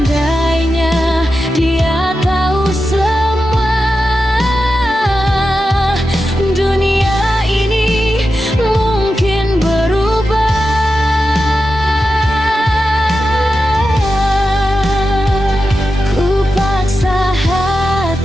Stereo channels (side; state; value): both; normal; correlation 0.90